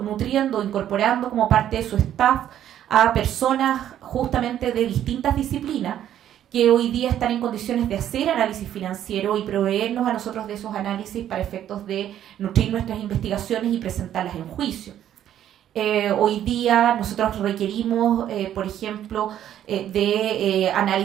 nutriendo, incorporando como parte de su staff a personas justamente de distintas disciplinas que hoy día están en condiciones de hacer análisis financiero y proveernos a nosotros de esos análisis para efectos de nutrir nuestras investigaciones y presentarlas en juicio. Hoy día nosotros requerimos, por ejemplo, de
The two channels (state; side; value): quieter; left; 11.0 dB